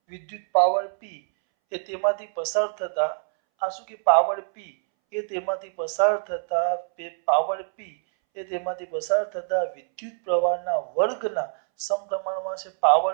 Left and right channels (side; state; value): left; silent; 62 dB below the other